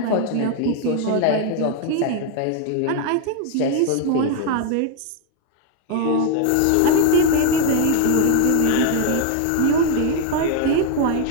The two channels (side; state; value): both; different; correlation 0.01